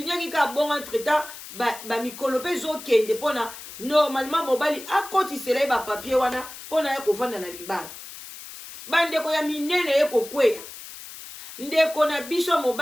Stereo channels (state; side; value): noise; left; hiss, 14 dB below the sound